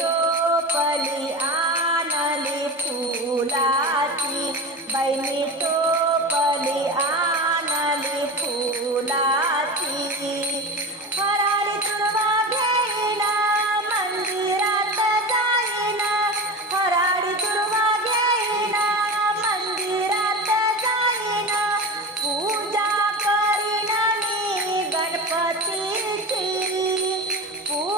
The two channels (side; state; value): both; normal; correlation 0.26